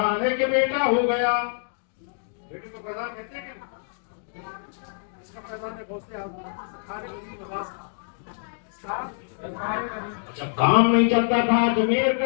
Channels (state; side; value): silent; right; digital silence